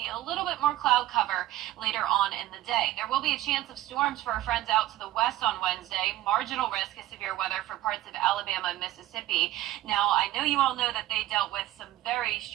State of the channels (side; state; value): left; quieter; 15.0 dB